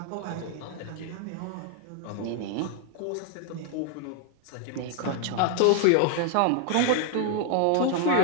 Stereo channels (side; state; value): both; different; correlation 0.00